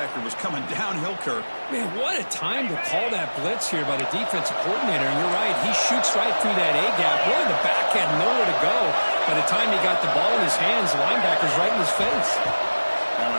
was coming downhill, Kirk. Man, what a time to call that blitz here by the defensive coordinator. And you're right, he shoots right through that A-gap. Really, the back had nowhere to go. By the time he got the ball in his hands, the linebacker's right in his face. Now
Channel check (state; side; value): inverted; both; correlation -1.00